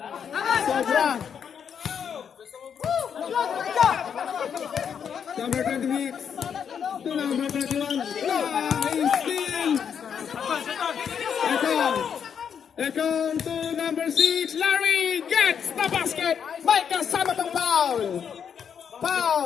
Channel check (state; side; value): quieter; right; 7.6 dB